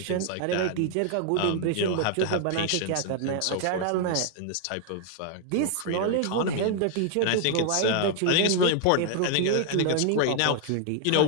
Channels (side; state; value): both; different; correlation 0.00